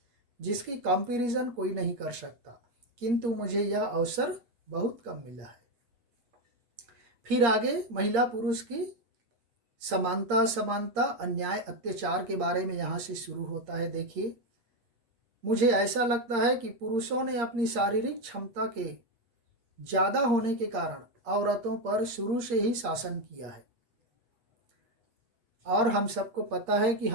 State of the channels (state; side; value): late; left; 8.6 ms